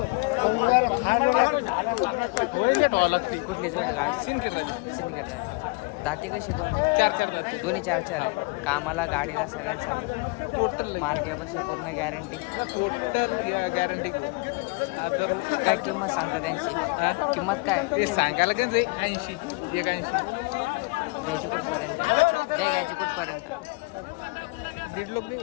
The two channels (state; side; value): quieter; right; 27.9 dB